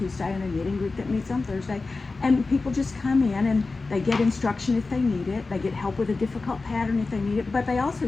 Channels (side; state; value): right; quieter; 3.8 dB